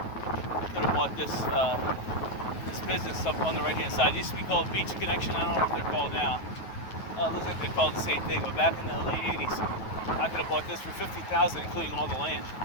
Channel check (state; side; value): late; right; 9.3 ms